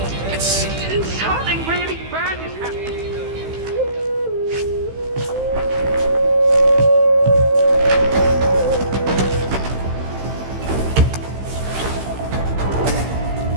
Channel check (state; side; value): late; left; 15 ms